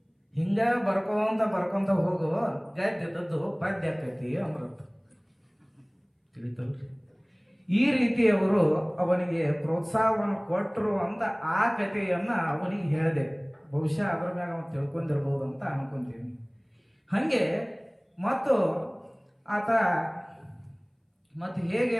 ಹಿಂಗ ಬರ್ಕೊಂತ ಹೋಗು, ಗದ್ದೆದದ್ದು ಪದ್ಯ ಆಕೈತಿ ಅಂದ್ರಂತ. ತಿಳಿತಲ್ರಿ? ಈ ರೀತಿ ಅವರು ಅವನಿಗೆ ಪ್ರೋತ್ಸಾಹವನ್ನು ಕೊಟ್ಟರು ಅಂತ ಆ ಕಥೆಯನ್ನ ಅವನಿಗೆ ಹೇಳಿದೆ. ಬಹುಶಃ ಅದ್ರ ಮ್ಯಾಗ ಅವನು ತಿಳ್ಕೊಂಡಿರ್ಬೋದು ಅಂತ ಅನ್ಕೊಂತೀನಿ. ಹಾಗೆ ಮತ್ತು ಆತ ಮತ್ತೆ ಹೇಗೆ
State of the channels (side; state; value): both; identical; correlation 1.00